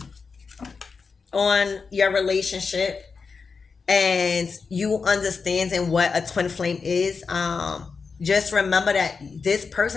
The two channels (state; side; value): quieter; right; 5.0 dB